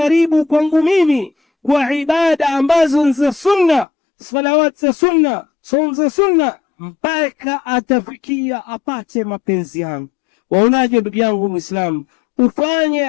kwangu mimi kwa ibada ambazo ni za sunna, salawat za sunna, saum za sunna, mpaka atafikia apate mapenzi yangu. Waonaje ndugu yangu Muislamu? Ufanye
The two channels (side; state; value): right; drops out; at 3.9 s